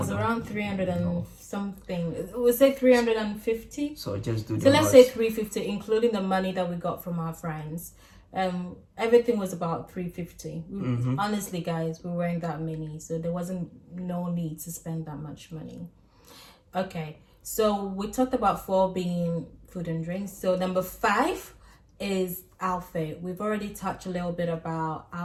around 300 and something. We'll say 350. So just do the let's say 350, including the money that we got from our friends. Everything was about 350. Honestly, guys, we weren't that many, so there wasn't no need to spend that much money. Okay, so we talked about 4 being food and drinks. So number 5 is outfit. We've already touched a little bit about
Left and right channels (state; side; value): identical; both; correlation 1.00